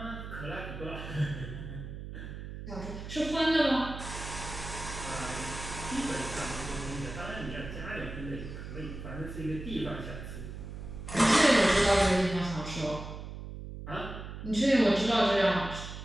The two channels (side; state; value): right; noise; hum, 9 dB below the sound